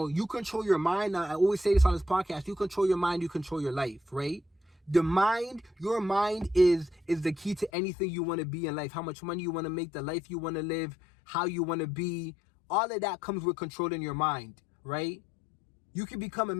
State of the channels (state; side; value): drops out; right; at 7.7 s